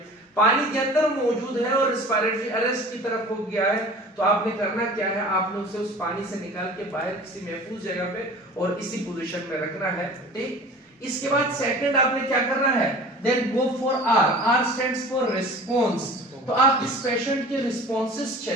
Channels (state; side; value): normal; both; correlation 0.41